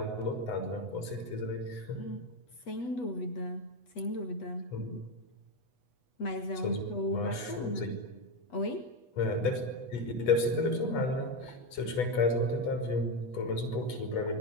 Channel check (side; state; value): right; late; 8.1 ms